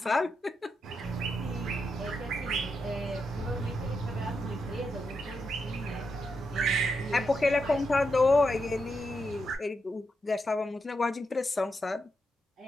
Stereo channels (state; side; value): normal; both; correlation 0.84